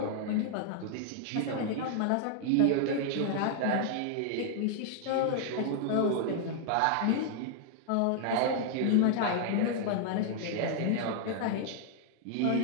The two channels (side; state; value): both; different; correlation 0.00